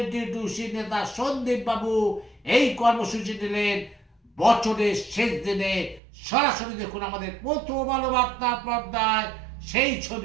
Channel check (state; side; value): drops out; left; at 6.0 s